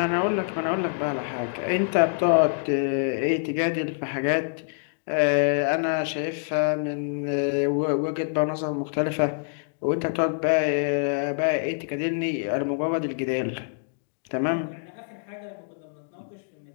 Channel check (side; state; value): right; silent; digital silence